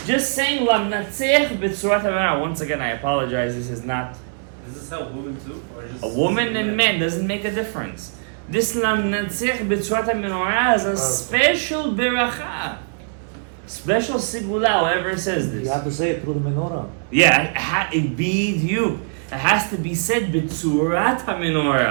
just saying Lam Natzeach B'Tzurat HaMenorah. Once again, I apologize, this is not... Does this help women too? Or just A woman and men doesn't make a difference. This Lam Natzeach B'Tzurat HaMenorah is a special beracha. Special sigula, whoever says this. You have to say it through the menorah. Yeah, it be you. It has to be said B'Tzurat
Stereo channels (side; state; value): left; silent; 64 dB below the other